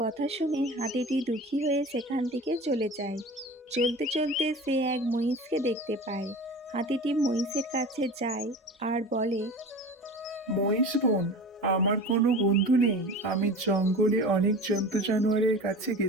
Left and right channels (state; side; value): normal; both; correlation 0.36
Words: কথা শুনে হাতিটি দুঃখী হয়ে সেখান থেকে চলে যায়। চলতে চলতে সে এক মহিষকে দেখতে পায়। হাতিটি মহিষের কাছে যায় আর বলে, মহিষ বোন, আমার কোনো বন্ধু নেই। আমি জঙ্গলে অনেক জন্তু জানোয়ারের কাছে